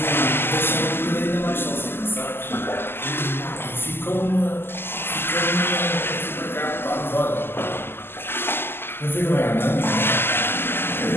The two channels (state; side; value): late; right; 0.11 ms